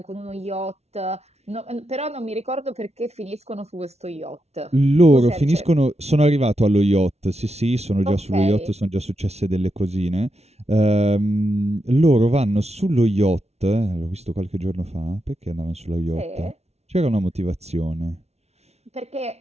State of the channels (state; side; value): late; left; 0.31 ms